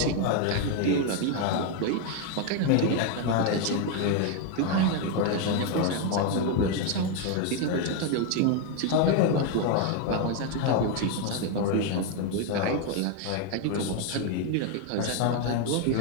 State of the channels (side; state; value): both; different; correlation 0.01